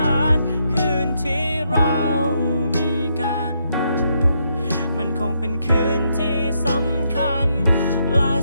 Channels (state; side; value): inverted; both; correlation -0.77